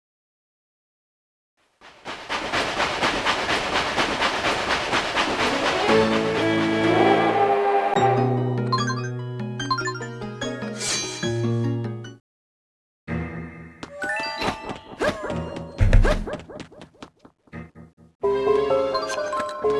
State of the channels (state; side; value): identical; both; correlation 1.00